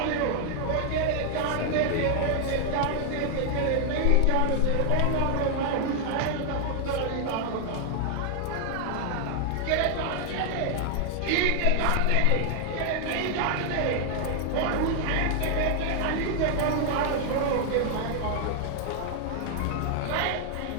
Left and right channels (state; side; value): different; both; correlation 0.00